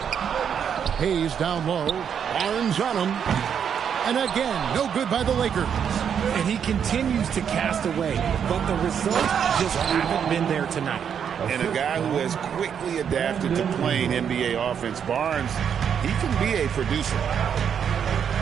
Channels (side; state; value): left; quieter; 7.9 dB